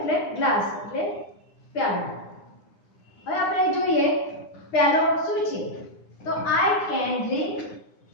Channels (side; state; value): right; late; 9.8 ms